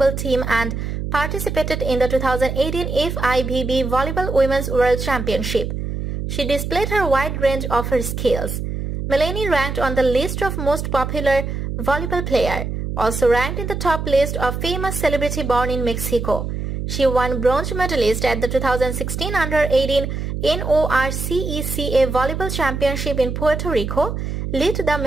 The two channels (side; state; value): right; noise; hum, 4 dB below the sound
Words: team and participated in the 2018 FIVB Volleyball Women's World Championship. She displayed her wide range of her skills. Melanie ranked on the list of most popular volleyball player, also ranked in the top list of famous celebrity born in Mexico. She won bronze medalist at the 2016 Under-18 NORCECA Volleyball Championship in Puerto Rico, led the